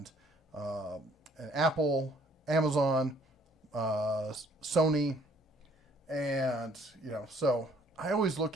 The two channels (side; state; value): both; normal; correlation 0.61